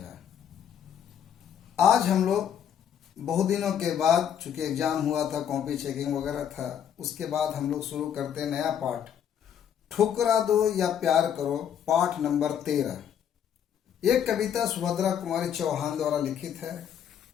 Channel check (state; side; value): quieter; right; 9.0 dB